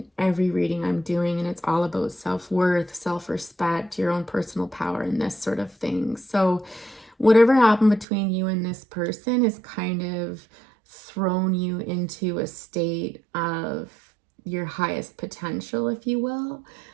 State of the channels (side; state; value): left; drops out; at 8.1 s